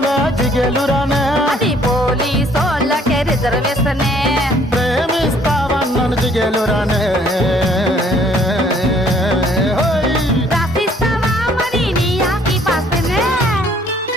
జిగలు రానే. అది పోలీసోళ్ళకే రిజర్వేషనే. ప్రేమిస్తావన్నను జిగలు రానే. రాసిస్తావా మరి నీ ఆస్తి పాస్తేనే.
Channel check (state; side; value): normal; both; correlation 0.61